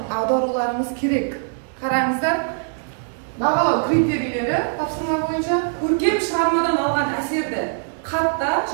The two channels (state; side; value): silent; left; digital silence